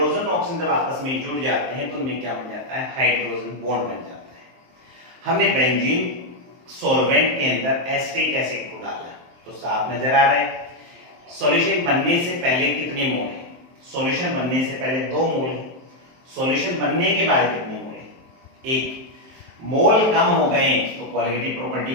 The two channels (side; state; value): left; late; 23 ms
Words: ऑक्सीजन जब आपस में जुड़ जाते हैं तो उनमें क्या बन जाता है हाइड्रोजन बॉन्ड बन जाता है। हमने बेंजीन सॉल्वेंट के अंदर एसिटिक एसिड को डाला तो साफ नजर आ रहा है। सॉल्यूशन बनने से पहले कितने मोल है, सॉल्यूशन बनने से पहले 2 मोल है, सॉल्यूशन बनने के बाद कितने मोल है 1। मोल कम हो गए तो कोलिगेटिव प्रॉपर्टी